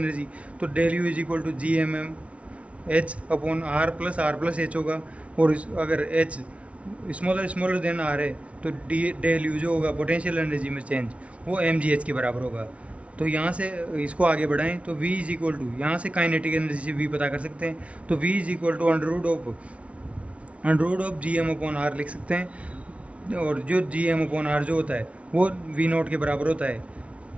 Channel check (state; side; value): late; left; 0.063 ms